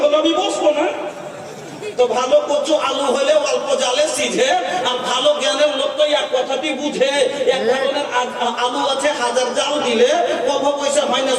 হলো, আমি বসবো না। তো ভালো কচু আলু হলে অল্প জালে সিঝে, আর ভালো জ্ঞানের লোক তো এক কথাটি বুঝে। এক ধরনের আলু আছে, হাজার জাল দিলে কব পয়সা হয় না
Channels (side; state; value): both; identical; correlation 1.00